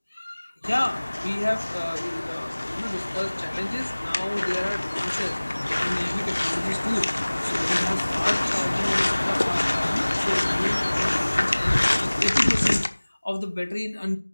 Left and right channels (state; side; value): inverted; both; correlation -1.00